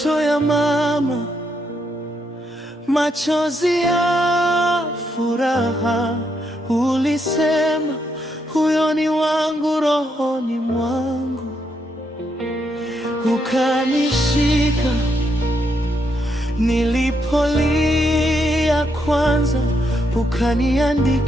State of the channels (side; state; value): both; normal; correlation 0.78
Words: ya mama, machozi ya furaha. Ulisema huyo ni wangu rohoni mwangu, ukanishika nilipolia kwanza,